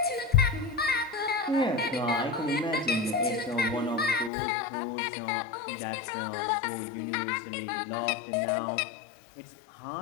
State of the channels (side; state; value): right; drops out; at 4.3 s